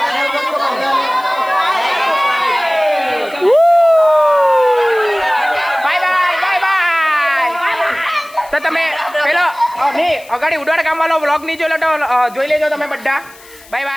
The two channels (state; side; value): noise; left; hiss, 23 dB below the sound